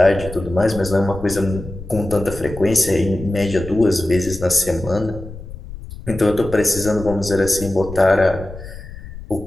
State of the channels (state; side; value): noise; left; rumble, 13 dB below the sound